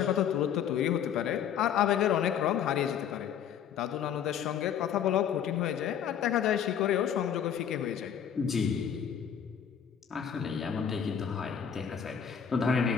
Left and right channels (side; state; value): right; quieter; 8.5 dB